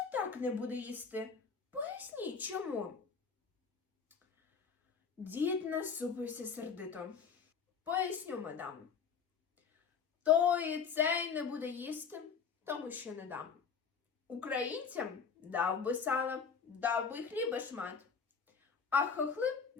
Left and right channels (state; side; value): quieter; right; 6.1 dB